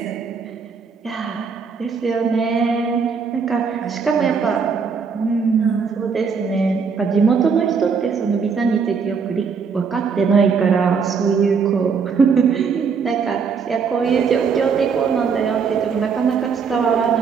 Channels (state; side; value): quieter; left; 5.7 dB